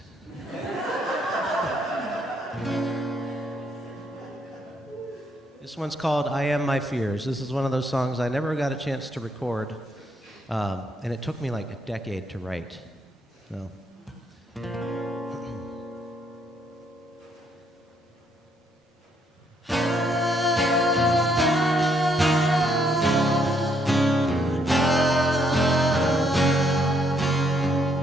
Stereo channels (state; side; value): normal; both; correlation 0.72